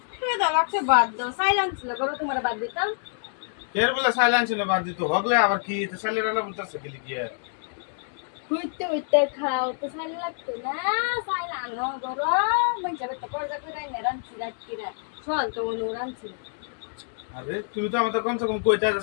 খিদা লাগছে বাদ দাও সাইলেন্স ছিল করো তোমার বাদ দিতাম এর বেলা সাইলেন্স ছিল বাদ দিত হগলে আবার কি তো সাইলেন্স বলতেছে গেলি গিয়ে হইতে হইতে খাও তো সাইল লাগতো না সাইল আনো করো মানে যাবে তো করজা করে না রানছি রাতকিরা চল তো অনু রানছি আরে তুমি তো আমাদের কমসে কম কইতা যে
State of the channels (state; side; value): silent; right; digital silence